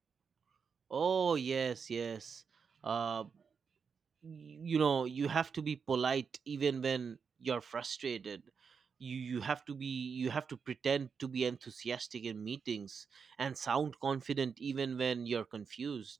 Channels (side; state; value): left; quieter; 6.0 dB